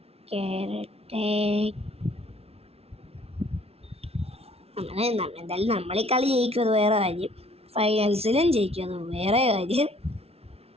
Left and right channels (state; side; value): late; left; 0.30 ms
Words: എന്തായാലും നമ്മളീ കളി ജയിക്കും, അത് വേറെ കാര്യം. ഫൈനൽസിലും ജയിക്കും, അത് വേറെ കാര്യം.